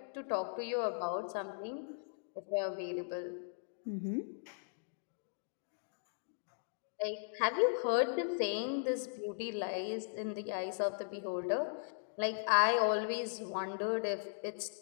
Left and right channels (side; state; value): right; silent; digital silence